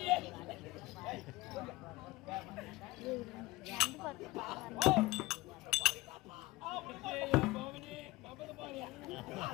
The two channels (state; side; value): quieter; right; 20.1 dB